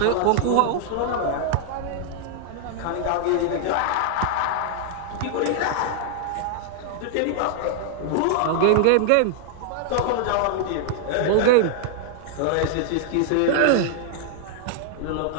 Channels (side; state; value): both; different; correlation 0.00